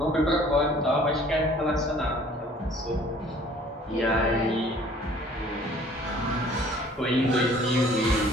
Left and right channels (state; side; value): normal; both; correlation 0.54